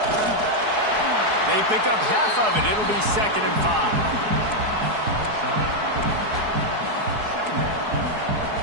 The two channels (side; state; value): left; late; 4.7 ms